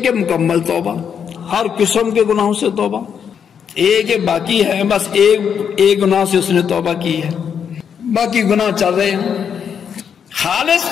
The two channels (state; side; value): quieter; right; 7.6 dB